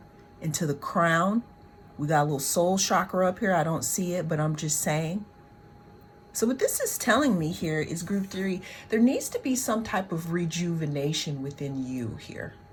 into the crown. We got a little soul chakra up here. I don't see it, but I'm just saying. So what this is telling me here is group 3, there needs to be some type of rejuvenation within you here.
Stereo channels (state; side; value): identical; both; correlation 1.00